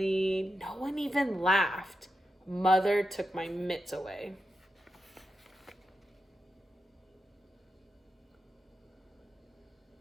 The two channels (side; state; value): both; normal; correlation 0.88